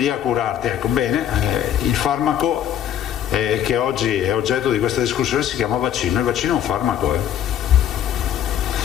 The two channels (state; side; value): quieter; right; 10.2 dB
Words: a curarti, ecco. Bene, il farmaco che oggi è oggetto di questa discussione si chiama vaccino, il vaccino è un farmaco.